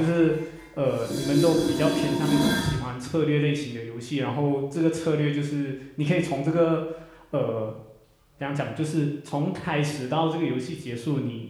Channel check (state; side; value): identical; both; correlation 1.00